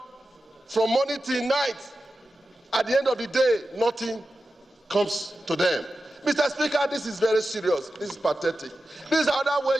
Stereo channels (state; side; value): normal; both; correlation 0.93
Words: from morning till night. At the end of the day, nothing comes to them. Mr. Speaker, this is very serious. This is pathetic. This is another way